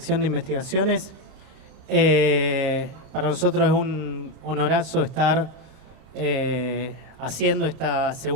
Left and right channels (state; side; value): late; left; 31 ms